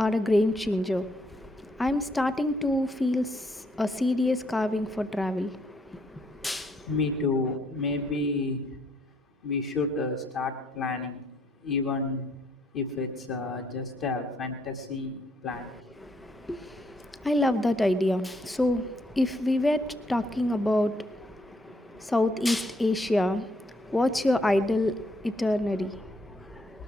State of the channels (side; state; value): both; normal; correlation 0.71